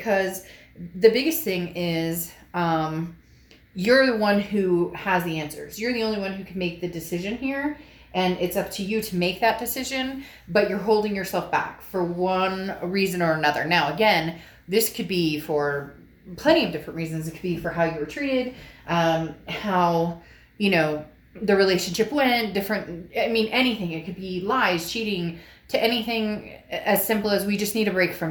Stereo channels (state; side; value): identical; both; correlation 1.00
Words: the biggest thing is, you're the one who has the answers. You're the only one who can make the decision here, and it's up to you to make that decision, but you're holding yourself back for one reason or another. Now, again, this could be for plenty of different reasons. It could be for how you were treated, how, the relationship went, anything. It could be lies, cheating, to anything as simple as we just need a break